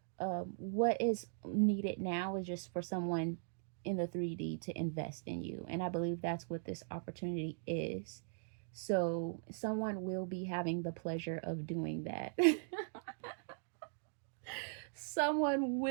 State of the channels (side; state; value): left; silent; digital silence